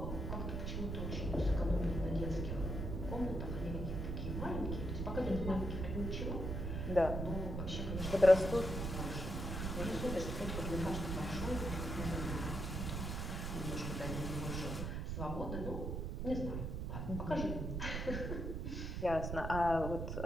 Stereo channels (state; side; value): noise; right; rumble, 3 dB below the sound